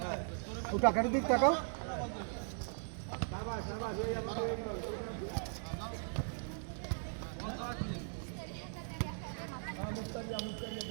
ওটা আখেরের দিক তাকাও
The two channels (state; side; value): silent; left; 52 dB below the other